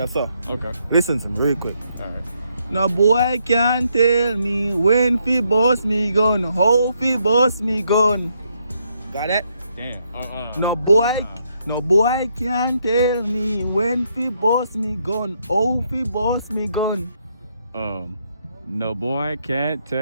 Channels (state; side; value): inverted; both; correlation -0.76